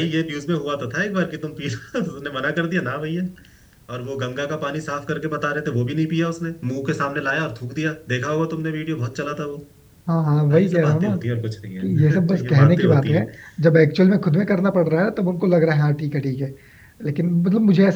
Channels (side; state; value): both; identical; correlation 1.00